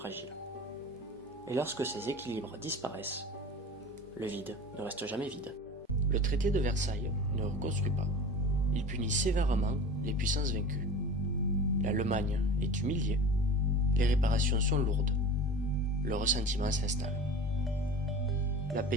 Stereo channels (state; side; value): normal; both; correlation 0.36